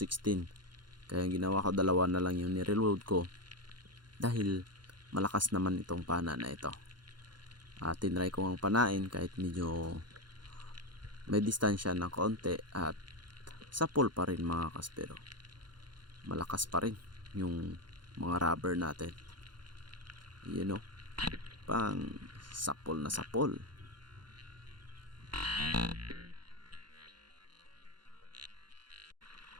kaya yung ginawa ko dalawa na lang yung nireload ko dahil malakas naman itong pana na ito. At tinry ko ang panain kahit medyo may distansya ng konti at sapol pa rin mga kaspero, malakas pa rin yung mga rubber natin, you know, pang sapol na sapol.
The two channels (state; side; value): late; left; 0.71 ms